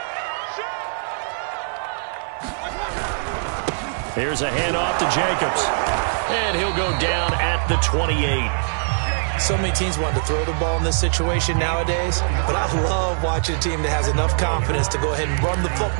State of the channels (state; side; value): silent; left; 63 dB below the other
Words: Here's a handoff to Jacobs. And he'll go down at the 28. So many teams want to throw the ball in this situation nowadays, but I love watching a team that has enough confidence to go ahead and run the